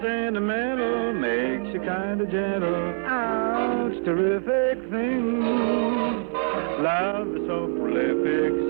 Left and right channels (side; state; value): left; silent; digital silence